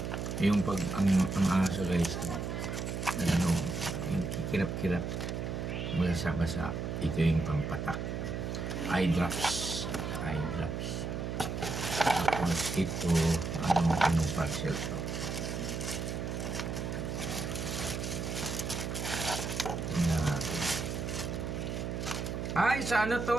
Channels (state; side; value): noise; right; hum, 3 dB below the sound